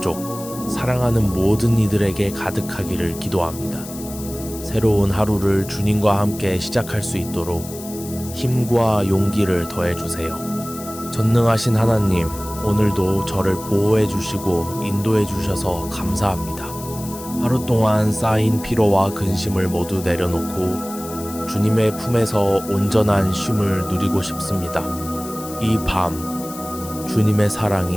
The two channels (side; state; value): left; noise; hiss, 14 dB below the sound